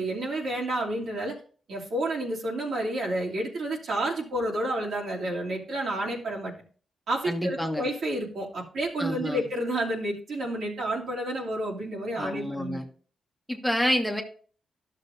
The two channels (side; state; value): both; normal; correlation 0.80